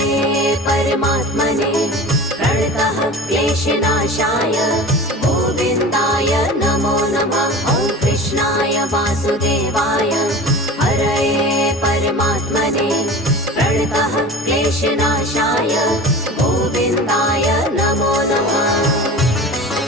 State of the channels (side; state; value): both; normal; correlation 0.36